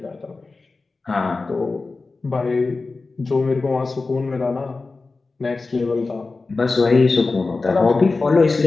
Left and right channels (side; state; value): right; quieter; 3.8 dB